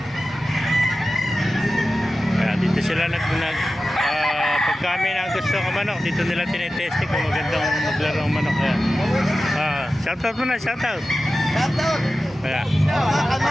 Ayan, dito sila pagka may na gusto ng manok, dito nila tinetesting kung magandang maglaro ng manok. Ayan. Shoutout mo na, shoutout. Shoutout! Ayan.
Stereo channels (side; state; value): both; normal; correlation 0.94